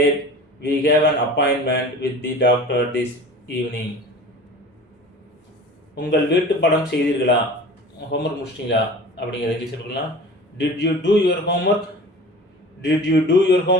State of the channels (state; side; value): normal; both; correlation 0.40